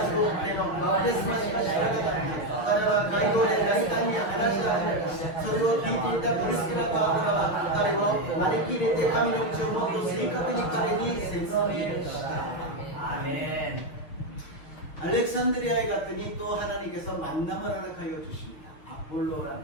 ヨハネのバプテスマしか知らなかった。 彼は街道で大胆に話し始めた。それを聞いていたプリスキラとアブラは彼を招き入れて神の道をもっと正確に彼に説明した. 아멘. 알렉산드리아에 갔더니 또 하나님께서 만남을 허락하여 주십니다. 아폴로라는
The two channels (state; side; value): late; right; 6.6 ms